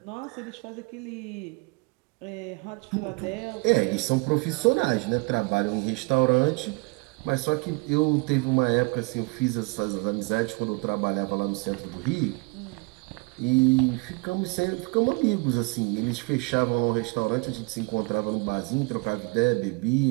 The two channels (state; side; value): quieter; left; 29.6 dB